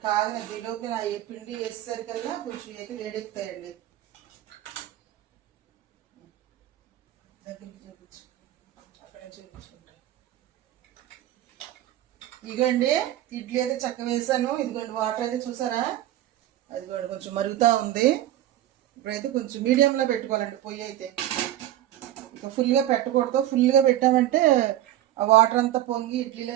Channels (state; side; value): quieter; left; 13.2 dB